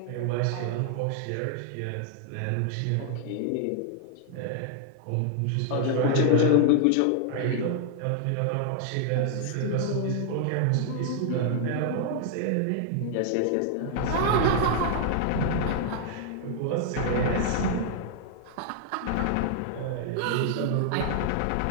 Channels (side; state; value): both; different; correlation 0.00